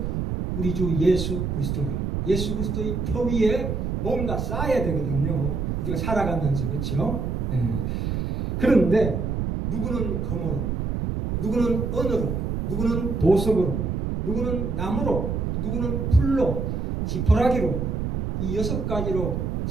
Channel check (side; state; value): right; noise; rumble, 1 dB below the sound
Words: 우리 주 예수 그리스도라. 예수 그리스도의 터 위에 뭔가 쌓아야 되거든요. 우리가 살아가면서. 그렇죠? 예. 그런데 누구는 금으로, 누구는 은으로, 누구는 보석으로, 누구는 나무로, 누구는 풀로, 지푸라기로 이 6가지로